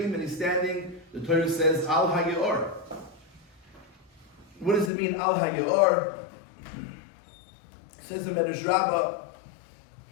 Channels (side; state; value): right; drops out; at 4.9 s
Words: and he's standing, the Torah says, Al HaYeor. What does it mean, Al HaYeor? Says the Medrash Rabbi,